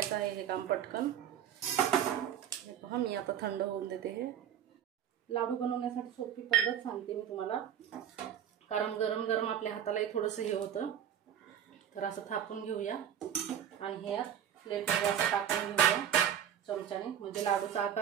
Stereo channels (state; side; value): quieter; left; 9.6 dB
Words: आहे हे काम पटकन. हे पहा मी आता थंड होऊन देते. हे लाडू बनवण्यासाठी सोपी पद्धत सांगते मी तुम्हाला, कारण गरम गरम आपल्या हातालाही थोडंसं हे होतं. तर असं थापून घेऊया आणि हे प्लेटमध्ये असं टाकून घेऊया चमच्याने, म्हणजे लाडूचा